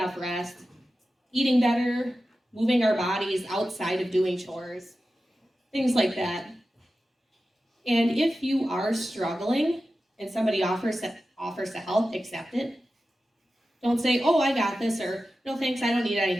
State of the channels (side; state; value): both; normal; correlation 0.93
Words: rest, eating better, moving our bodies outside of doing chores, things like that. And if you are struggling and somebody offers to help, accept it. Don't say, oh, I got this, or no thanks, I don't need any